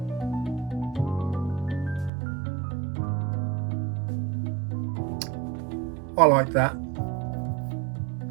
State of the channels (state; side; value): drops out; left; at 2.1 s